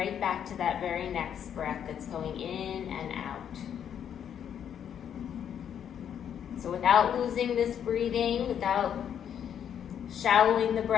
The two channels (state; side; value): quieter; right; 8.9 dB